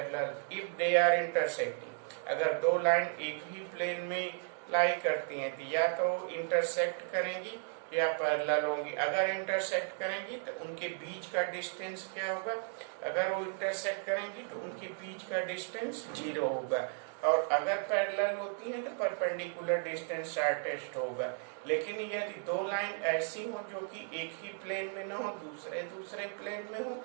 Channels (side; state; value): left; silent; 55 dB below the other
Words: If they are intersecting, अगर दो line एक ही plane में लाई करती हैं तो या तो intersect करेंगी या पैरेलल होंगी. अगर इंटरसेक्ट करेंगी तो उनके बीच का डिस्टेंस क्या होगा? अगर वो इंटरसेक्ट करेंगी तो उनके बीच का डिस्टेंस 0 होगा. और अगर पैरेलल होती हैं तो परपेंडिकुलर डिस्टेंस शॉर्टेस्ट होगा. लेकिन यदि दो लाइन ऐसी हो जो कि एक ही प्लेन में ना हो, दूसरे प्लेन में हो,